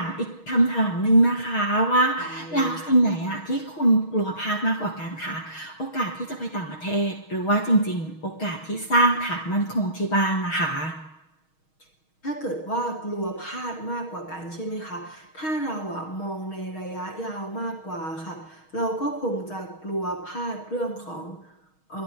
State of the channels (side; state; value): right; late; 6.4 ms